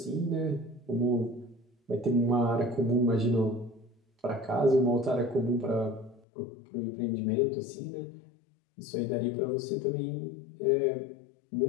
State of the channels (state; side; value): drops out; right; at 6.2 s